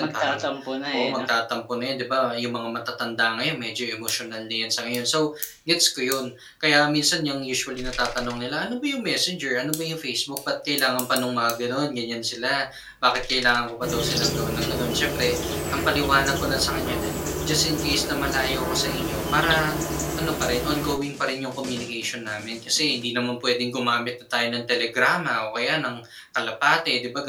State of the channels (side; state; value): both; identical; correlation 1.00